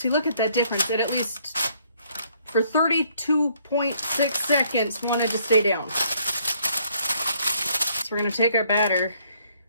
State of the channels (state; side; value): inverted; both; correlation -0.66